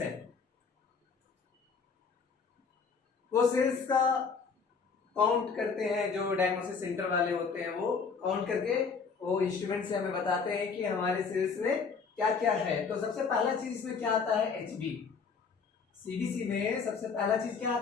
वो सेल्स का काउंट करते हैं। जो डायग्नोसिस सेंटर वाले होते हैं वो काउंट करके वो इंस्ट्रूमेंट से हमें बताते हैं कि हमारे सेल्स में क्या क्या है। तो सबसे पहला चीज इसमें क्या आता है? एचबी। सीबीसी में सबसे पहला चीज क्या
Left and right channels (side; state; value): right; quieter; 5.4 dB